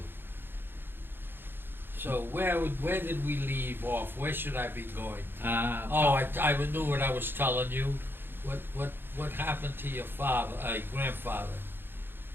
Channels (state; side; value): late; left; 0.10 ms